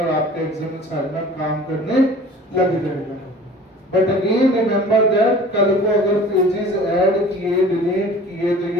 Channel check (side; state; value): both; normal; correlation 0.45